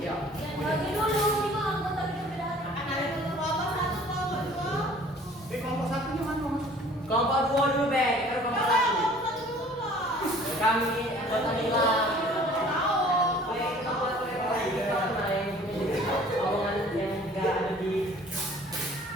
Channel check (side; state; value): both; normal; correlation 0.51